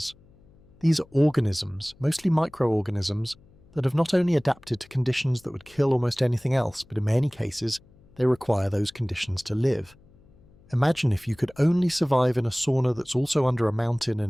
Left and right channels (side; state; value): left; noise; hum, 28 dB below the sound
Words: These are organisms, mostly microorganisms, that have not only adapted to conditions that would kill almost anything else, but in many cases, they require those conditions to live. Imagine if you could only survive in a sauna that's also under a mountain